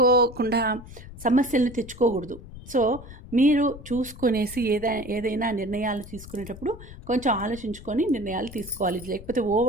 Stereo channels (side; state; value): left; noise; rumble, 15 dB below the sound